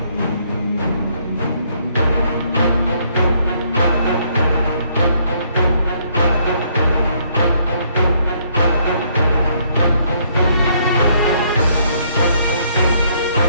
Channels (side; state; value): both; inverted; correlation -0.68